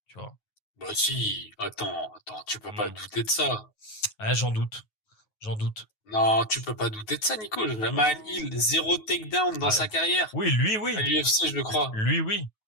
tu vois. Bah si, attends, tu peux pas Hmm. douter de ça. Ah, j'en doute. Non, tu peux pas douter de ça, Nico. Jamal Hmm. Hill, zéro takedown dans Ah, sa carrière. oui, lui, À oui, l'UFC, je le crois. lui, oui.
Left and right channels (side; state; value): right; late; 9.3 ms